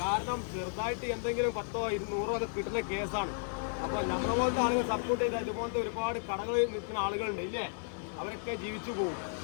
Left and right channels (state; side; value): silent; right; digital silence